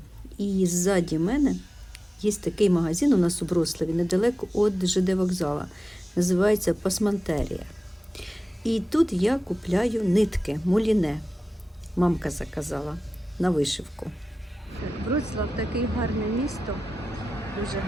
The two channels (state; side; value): normal; both; correlation 0.95